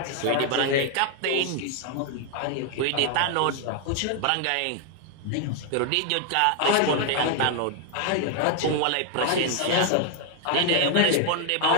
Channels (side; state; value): both; different; correlation 0.00